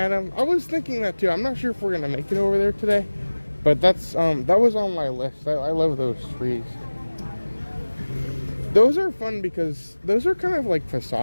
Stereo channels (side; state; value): both; inverted; correlation -1.00